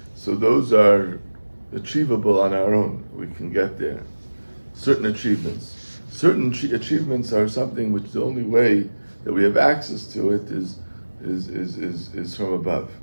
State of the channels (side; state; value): both; inverted; correlation -1.00